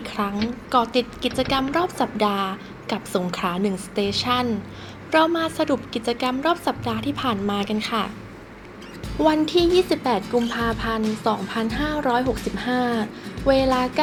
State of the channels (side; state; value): both; identical; correlation 1.00